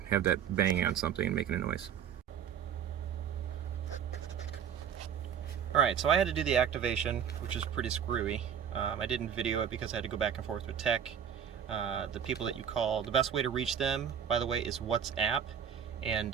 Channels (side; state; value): left; quieter; 8.3 dB